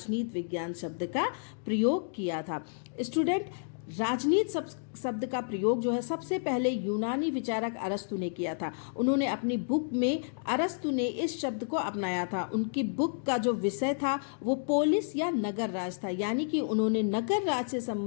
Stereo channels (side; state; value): right; silent; digital silence